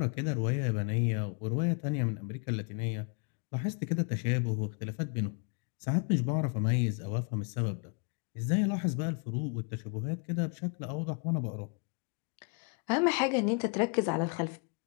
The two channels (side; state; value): right; quieter; 38.1 dB